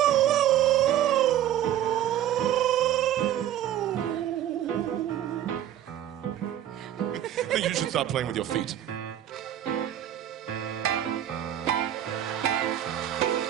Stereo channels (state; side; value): quieter; left; 11.5 dB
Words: start playing with your feet.